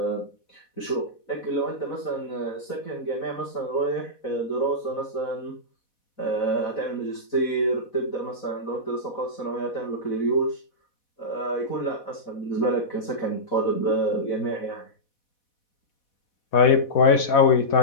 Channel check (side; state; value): right; late; 4.1 ms